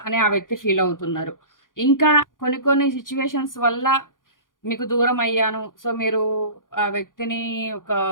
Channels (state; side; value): late; right; 0.89 ms